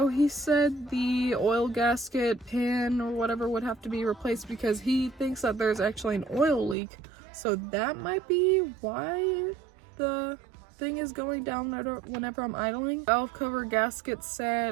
he said the oil gasket pin or whatever would have to be replaced because he thinks that there's actually an oil leak. So that might be why the thing is going down whenever I'm idling. Valve cover gasket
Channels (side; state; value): left; drops out; at 6.8 s